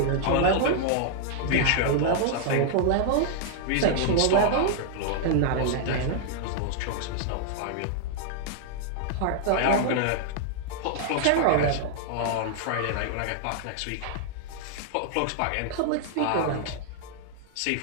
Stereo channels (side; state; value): both; different; correlation 0.00